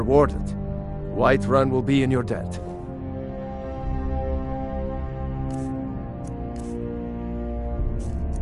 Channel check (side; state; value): both; identical; correlation 1.00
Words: Whiterun will be in your debt.